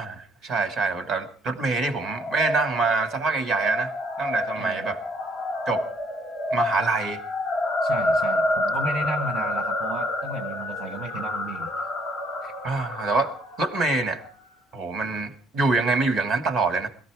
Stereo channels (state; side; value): normal; both; correlation 0.66